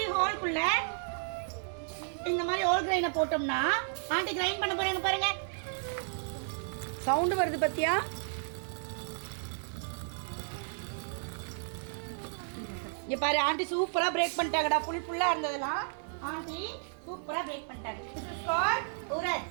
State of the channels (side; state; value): left; silent; digital silence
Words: ஹோல்க்குள்ள இந்த மாதிரி ஹோல் கிரைனை போட்டோம்னா ஆண்டி கிரைண்ட் பண்ண போறாங்க பாருங்க. சவுண்ட் வருது பத்தியா? இங்க பாரு ஆண்டி சூப்பரா பிரேக் பண்ணிட்டாங்கடா. ஃபுல்லா இருந்ததெல்லாம் ஆண்டி சூப்பரா பிரேக் பண்ணிட்டாங்க. This is called உரத்,